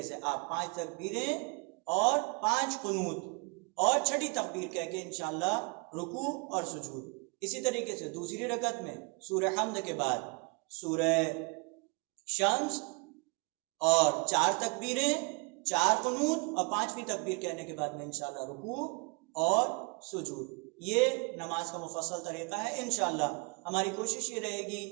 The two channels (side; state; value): left; quieter; 31.8 dB